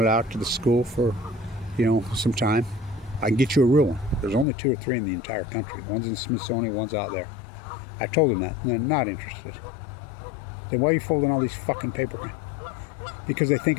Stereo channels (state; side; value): drops out; right; at 4.5 s